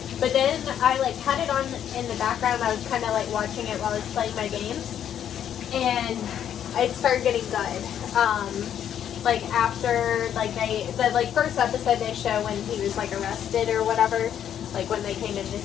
But then I, like, had it on in the background. I was kind of, like, watching it while I was playing my games, and it started getting good. Like, after, like, the first episode they show when he was, like, arrested or whatever, like, when they came into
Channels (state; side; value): quieter; right; 9.7 dB